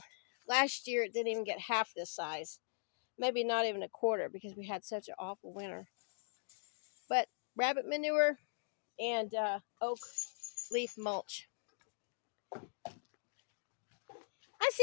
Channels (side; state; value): right; silent; digital silence